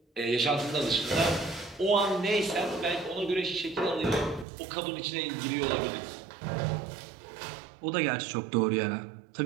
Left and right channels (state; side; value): drops out; left; at 4.5 s